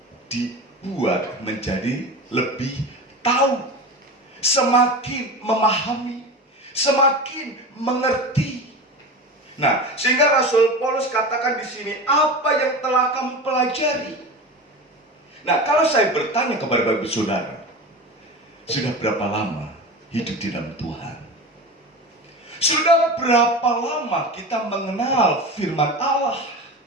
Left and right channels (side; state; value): both; normal; correlation 0.29